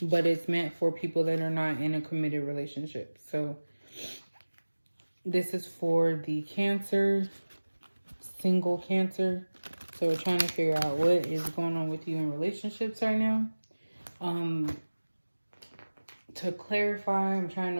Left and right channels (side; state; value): both; inverted; correlation -1.00